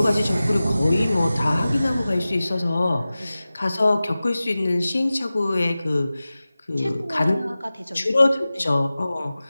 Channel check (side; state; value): both; inverted; correlation -0.96